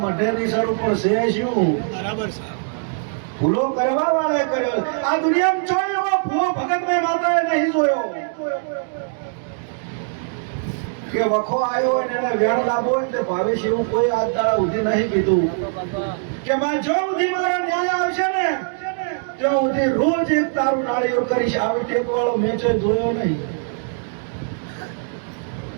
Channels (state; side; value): silent; left; digital silence